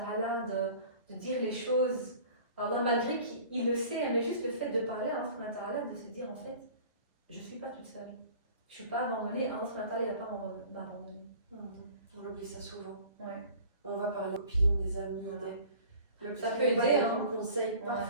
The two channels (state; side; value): inverted; both; correlation -0.45